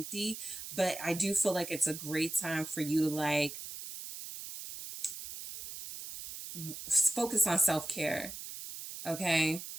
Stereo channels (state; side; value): noise; right; hiss, 10 dB below the sound